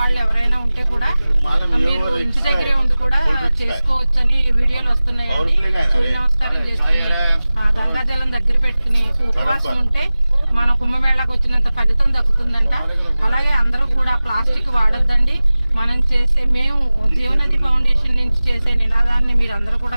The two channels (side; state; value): both; inverted; correlation -0.97